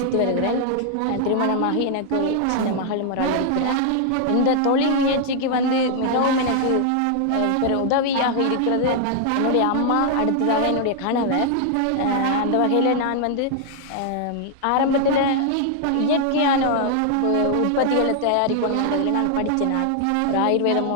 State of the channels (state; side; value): different; both; correlation 0.00